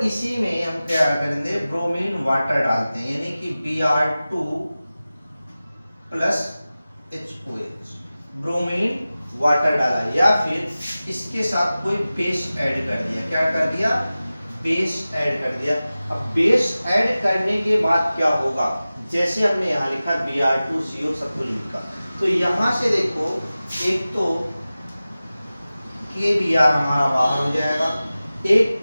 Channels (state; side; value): inverted; both; correlation -0.96